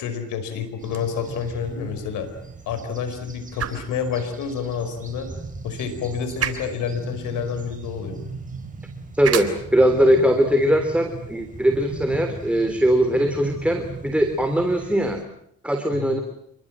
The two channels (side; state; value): both; normal; correlation 0.68